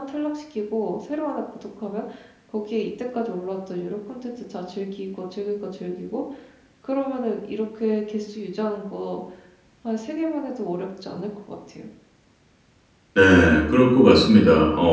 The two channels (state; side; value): identical; both; correlation 1.00